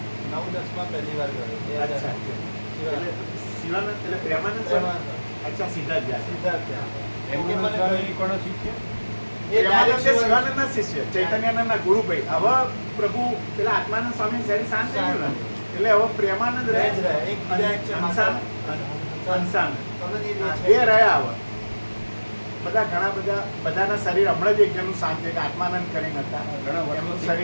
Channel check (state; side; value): inverted; both; correlation -1.00